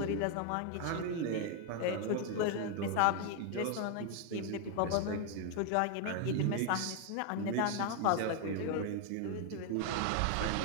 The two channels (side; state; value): both; different; correlation 0.01